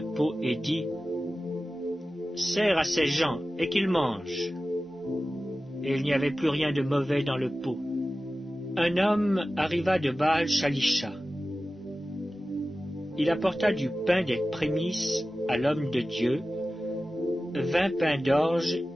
pot et dit, « Sers à ces gens et qu'ils mangent. » Et il n'y avait plus rien de mauvais dans le pot. Un homme arriva de Baal-Shalisha. Il apporta du pain des prémices à l'homme de Dieu, 20 pains d'orge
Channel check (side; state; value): both; normal; correlation 0.95